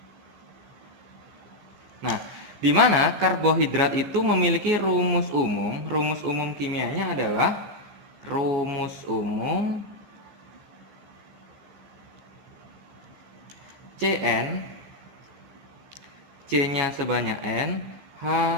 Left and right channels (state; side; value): late; left; 14 ms